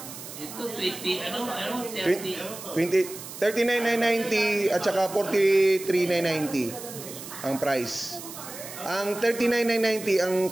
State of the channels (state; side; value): noise; right; hiss, 12 dB below the sound